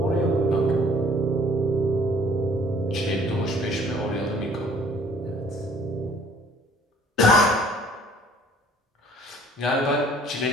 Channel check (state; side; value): normal; both; correlation 0.56